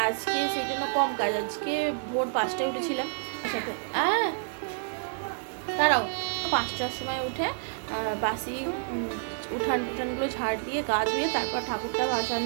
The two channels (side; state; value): left; silent; digital silence